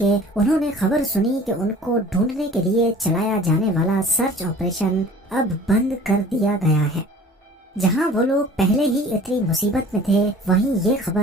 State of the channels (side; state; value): both; normal; correlation 0.47